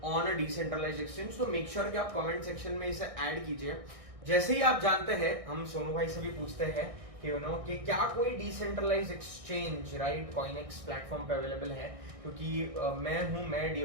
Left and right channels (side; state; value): left; late; 1.6 ms